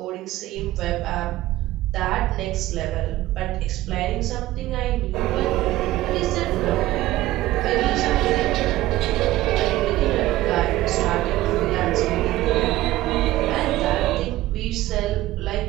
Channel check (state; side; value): quieter; left; 16.2 dB